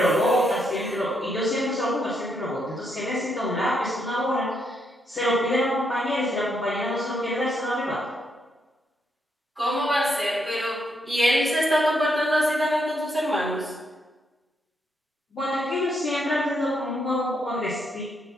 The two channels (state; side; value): normal; both; correlation 0.77